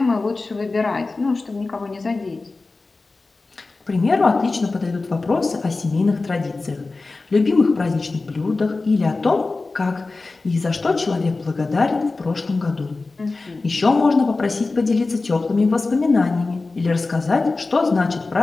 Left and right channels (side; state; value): right; quieter; 3.6 dB